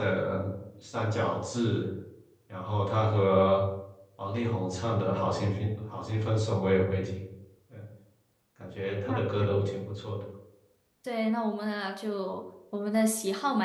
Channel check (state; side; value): identical; both; correlation 1.00